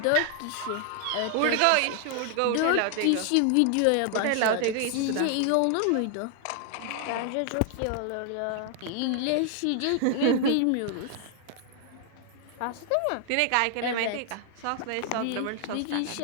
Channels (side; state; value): both; different; correlation 0.00